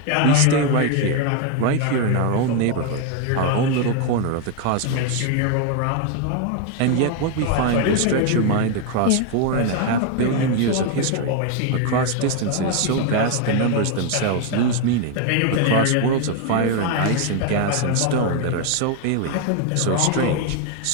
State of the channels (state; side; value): different; both; correlation 0.01